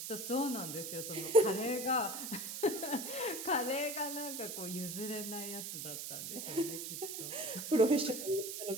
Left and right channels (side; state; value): right; noise; hiss, 6 dB below the sound